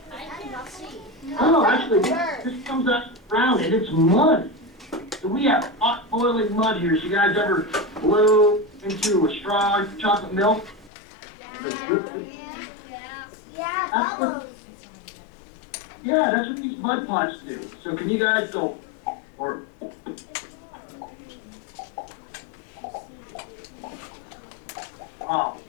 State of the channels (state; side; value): drops out; right; at 10.9 s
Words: I did not see. Oh, actually, this comes up ground and it's mud. So we have hot boiling mud here. So you guys ever blow into a straw of chocolate milk? Yeah, that's what these mud pots do. So can you guys go, or oh,